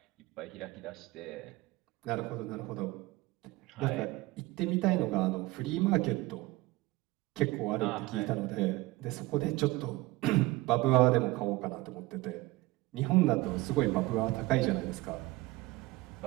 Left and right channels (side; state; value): left; quieter; 20.2 dB